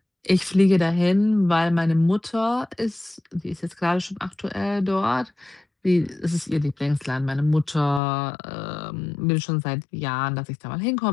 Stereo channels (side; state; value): right; drops out; at 8.0 s